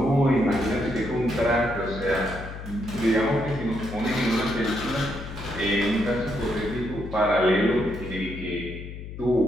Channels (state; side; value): noise; left; hum, 10 dB below the sound